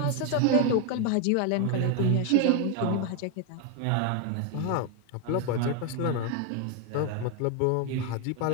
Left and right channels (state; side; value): different; both; correlation 0.01